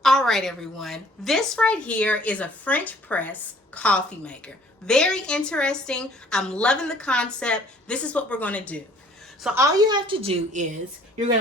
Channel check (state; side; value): normal; both; correlation 0.56